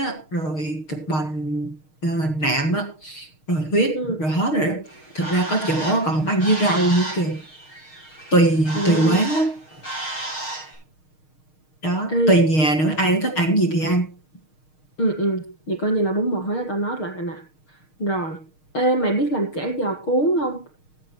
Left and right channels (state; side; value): late; right; 6.5 ms